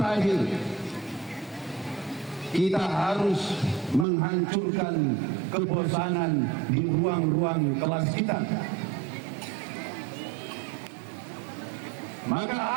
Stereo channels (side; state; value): left; drops out; at 4.0 s